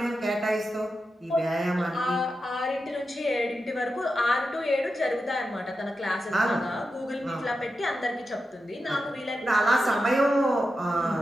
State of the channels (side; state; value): both; normal; correlation 0.90